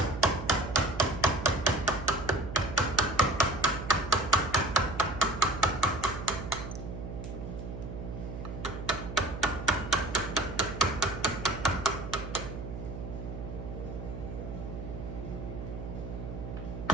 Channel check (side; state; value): right; noise; hum, 8 dB below the sound